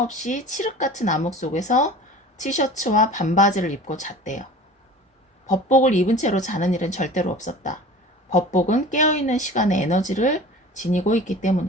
없이 칠흑 같은 암흑 속에서 티셔츠와 반바지를 입고 잤대요. 법복을 입은 채로 자는 일은 절대로 없었다. 법복은 깨어있는 시간의 에너지를 지니고 있기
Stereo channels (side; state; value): both; normal; correlation 0.40